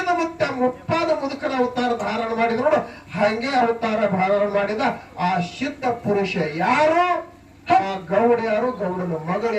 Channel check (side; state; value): both; identical; correlation 1.00